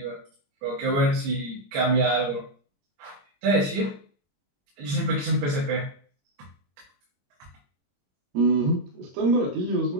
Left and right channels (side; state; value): left; late; 21 ms